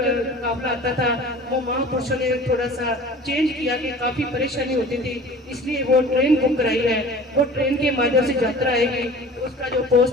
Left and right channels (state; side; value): normal; both; correlation 0.42